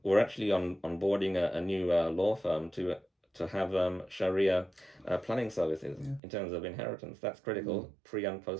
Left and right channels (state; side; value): drops out; left; at 6.2 s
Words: We're actually onboarding a new law firm to have Sharia planning services in terms of inheritance. That's critical pre and